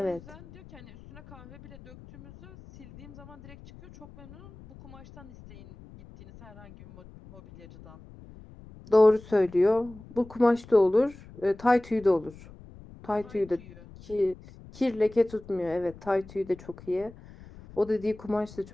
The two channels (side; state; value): left; noise; rumble, 20 dB below the sound